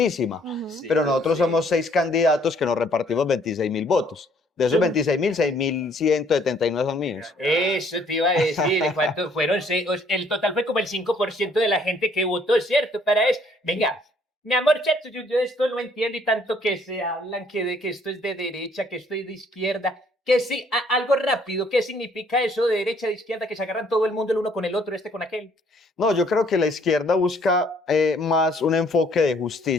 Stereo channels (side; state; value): both; normal; correlation 0.63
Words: Ujú. sí, pero nosotros sí. somos 6 candidatos que nos repartimos 26.000 votos. De esos 26.000, 6.179 son míos. Eso te iba a decir, ¿cuántos fueron? El total fue como el 5% de la gente que votó, ¿cierto? Para eso. Venga, mi amor, chato, yo esto no entiendo y tanto que se hablan que esto es de derecha, que esto es de izquierda. Que sí, algo rápido, ¿qué significa eso de derecha, de izquierda, que se agarran todo el mundo el uno con el otro, este con aquel? No, yo creo que la izquierda busca más un enfoque de